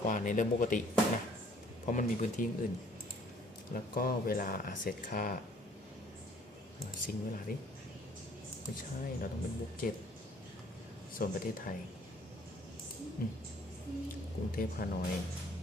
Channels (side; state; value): both; normal; correlation 0.58